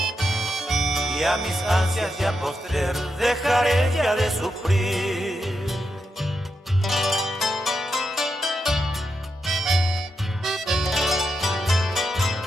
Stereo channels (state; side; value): normal; both; correlation 0.85